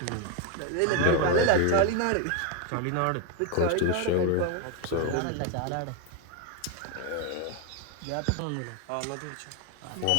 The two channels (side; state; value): both; different; correlation 0.02